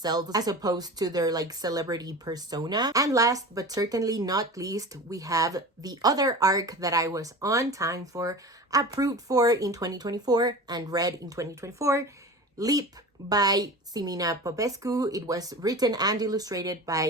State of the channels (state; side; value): normal; both; correlation 0.33